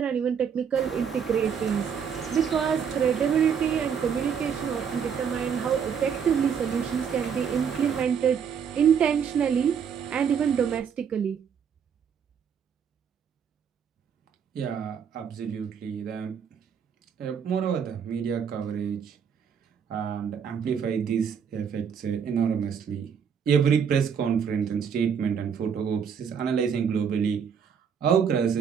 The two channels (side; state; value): left; quieter; 7.3 dB